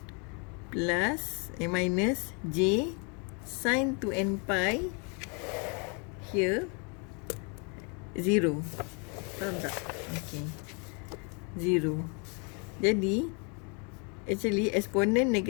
plus minus J sin 2n pi, here 0. Faham tak? Okay, 0. Jadi actually eksponen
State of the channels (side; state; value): right; quieter; 35.1 dB